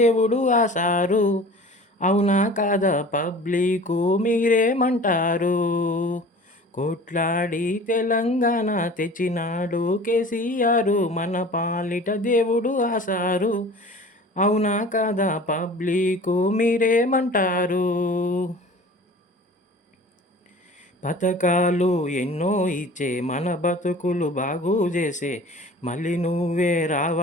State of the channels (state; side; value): normal; both; correlation 0.43